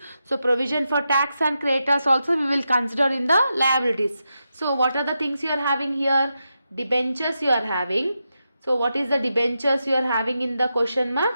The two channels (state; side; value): inverted; both; correlation -0.87